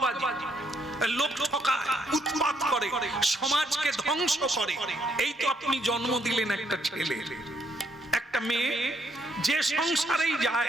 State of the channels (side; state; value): both; normal; correlation 0.72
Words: লোক ঠকায়, উৎপাত করে, সমাজকে ধ্বংস করে। এই তো আপনি জন্ম দিলেন একটা ছেলে। একটা মেয়ে যে সংসারেই